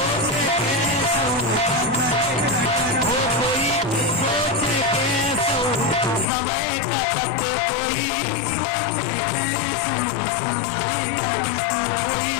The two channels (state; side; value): drops out; right; at 6.2 s